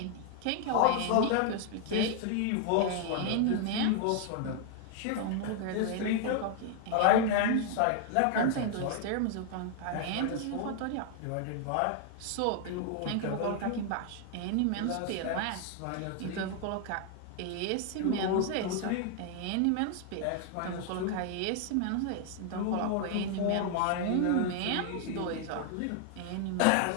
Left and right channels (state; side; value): different; both; correlation 0.00